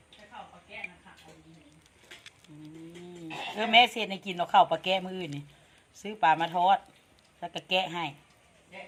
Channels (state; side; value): identical; both; correlation 1.00